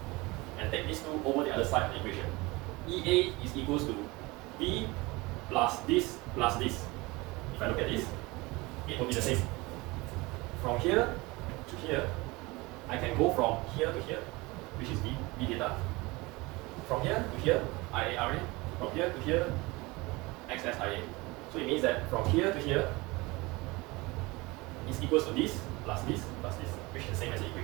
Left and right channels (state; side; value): quieter; left; 23.2 dB